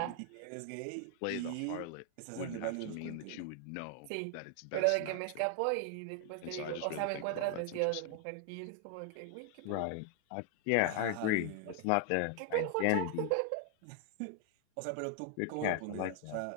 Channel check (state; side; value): different; both; correlation 0.00